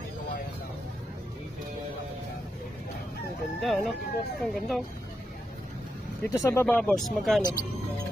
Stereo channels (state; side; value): normal; both; correlation 0.85